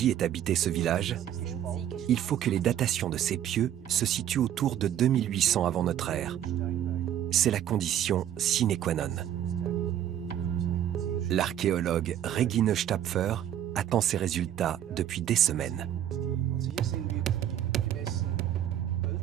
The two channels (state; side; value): quieter; left; 10.8 dB